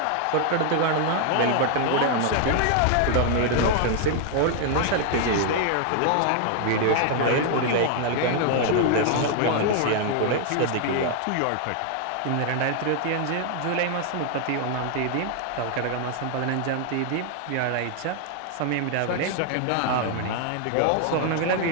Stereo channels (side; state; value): both; different; correlation 0.00